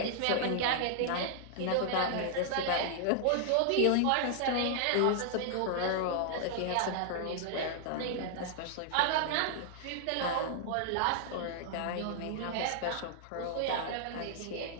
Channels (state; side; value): different; both; correlation -0.01